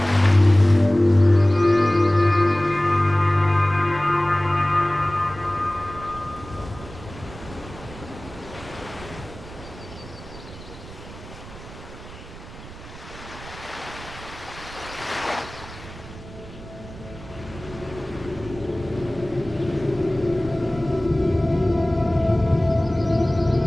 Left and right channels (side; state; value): right; noise; rumble, 16 dB below the sound